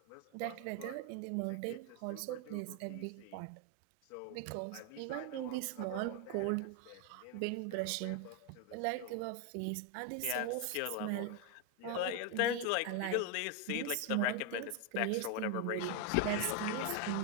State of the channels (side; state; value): both; different; correlation 0.01